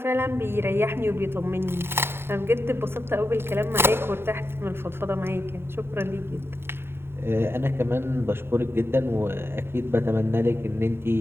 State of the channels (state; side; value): late; left; 0.11 ms